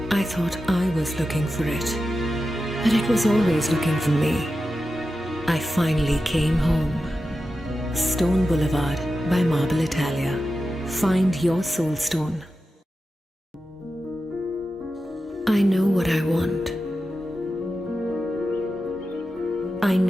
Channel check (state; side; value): normal; both; correlation 0.92